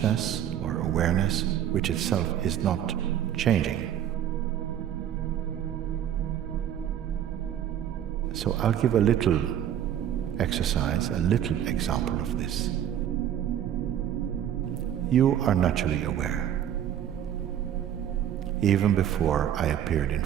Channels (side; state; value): left; quieter; 10.3 dB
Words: or awareness, which itself is not changing. So I'll give a little exercise, a little example of this. You are naturally aware. Even before I appeared in